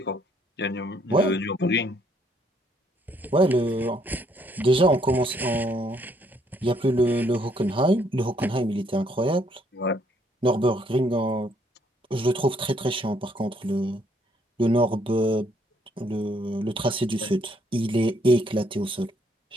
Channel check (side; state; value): both; normal; correlation 0.69